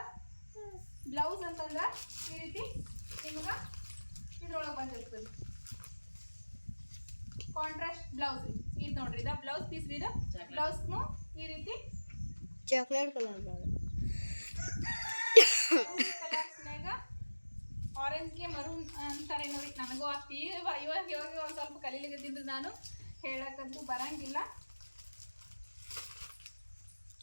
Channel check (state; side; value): inverted; both; correlation -1.00